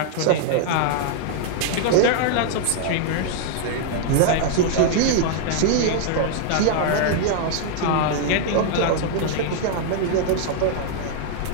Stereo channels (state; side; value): different; both; correlation -0.01